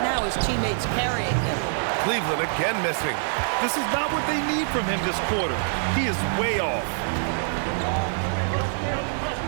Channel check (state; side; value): silent; left; digital silence